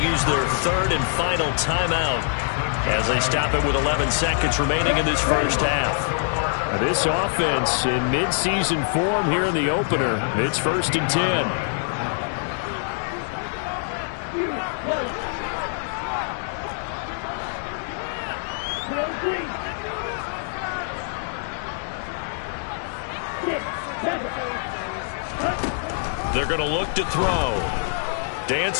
use their 3rd and final timeout as they stop it with 11 seconds remaining in this first half. This offense in mid-season form here in the opener. It's 1st and 10. They're going to look to throw.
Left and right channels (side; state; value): right; silent; digital silence